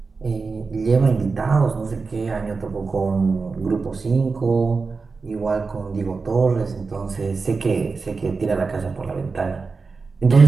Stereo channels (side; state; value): left; quieter; 4.5 dB